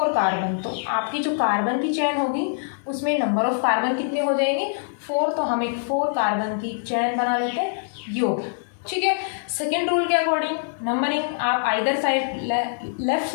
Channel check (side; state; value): right; silent; digital silence